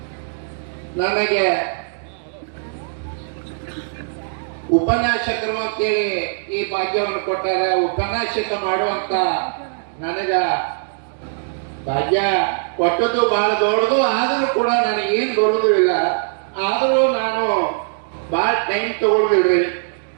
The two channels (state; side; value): silent; left; digital silence